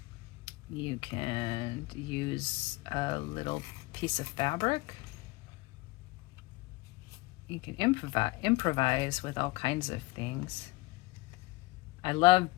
You can use a little piece of fabric. You can improvise with all kinds of things. I love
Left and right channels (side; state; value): right; quieter; 21.5 dB